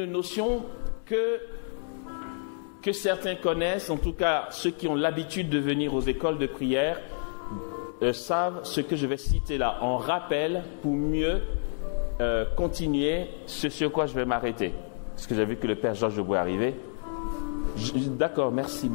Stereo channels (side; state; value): right; silent; digital silence